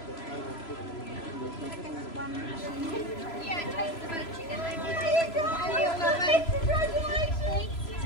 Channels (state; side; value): late; right; 3.0 ms